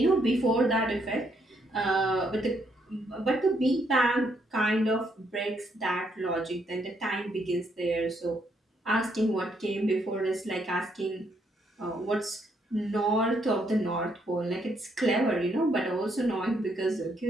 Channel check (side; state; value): both; normal; correlation 0.73